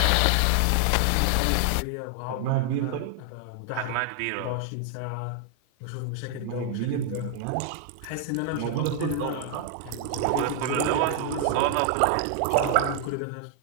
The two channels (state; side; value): different; both; correlation 0.00